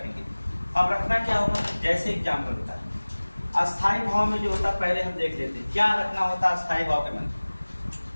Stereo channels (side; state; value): both; inverted; correlation -1.00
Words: अब रखना क्या होगा, जैसे एग्जाम में होता है अस्थाई भाव में जो होता है पहले हम देख लेते हैं क्या रखना होता है अस्थाई भाव के मन।